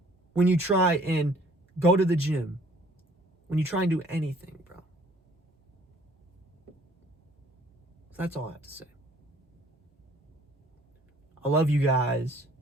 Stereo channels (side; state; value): both; normal; correlation 0.58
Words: when you try and go to the gym, when you try and do anything, bro. That's all I have to say. I love you guys.